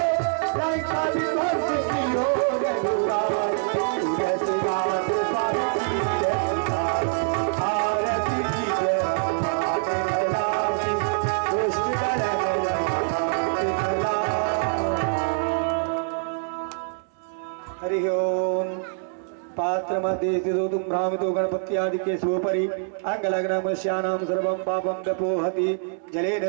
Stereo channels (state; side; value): silent; left; digital silence